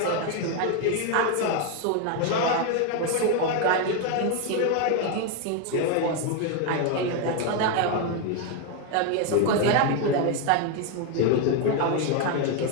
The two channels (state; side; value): different; both; correlation 0.01